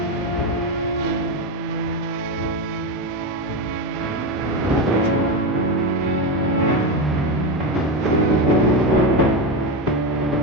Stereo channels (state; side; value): normal; both; correlation 0.14